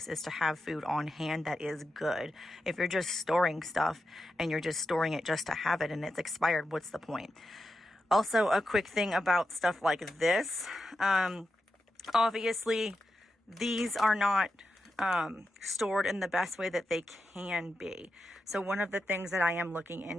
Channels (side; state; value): both; normal; correlation 0.89